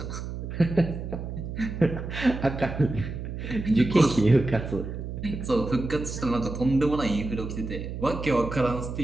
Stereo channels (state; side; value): noise; right; hum, 7 dB below the sound